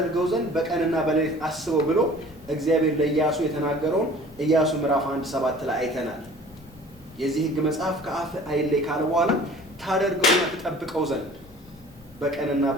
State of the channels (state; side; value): noise; left; rumble, 23 dB below the sound